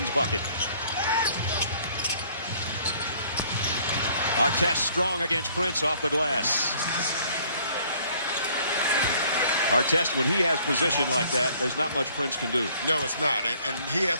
bucket. Artest strong against Prince off the glass. Artest, when he has position like that, there's not much Prince can do. No, it's not. And he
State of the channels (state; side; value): inverted; both; correlation -0.60